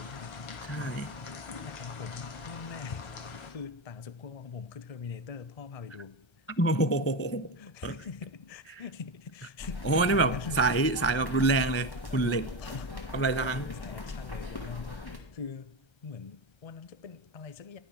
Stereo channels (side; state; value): right; late; 1.3 ms